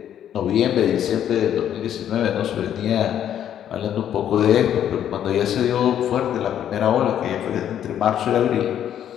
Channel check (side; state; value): right; quieter; 10.2 dB